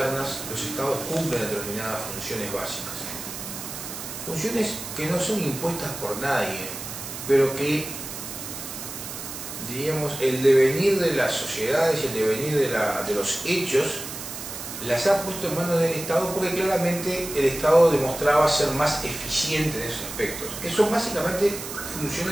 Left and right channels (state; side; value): noise; right; hiss, 9 dB below the sound